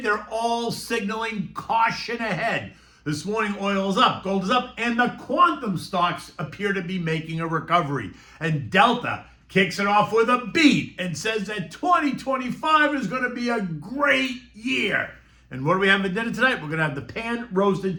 all signaling caution ahead. This morning, oil is up, gold is up, and the quantum stocks appear to be making a recovery. And Delta kicks it off with a beat and says that 2025 is going to be a great year. And what do we have for dinner tonight? We're going to have the pan-roasted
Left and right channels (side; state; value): both; identical; correlation 1.00